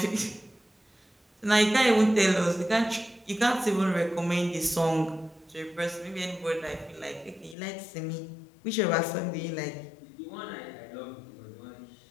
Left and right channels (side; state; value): right; drops out; at 7.6 s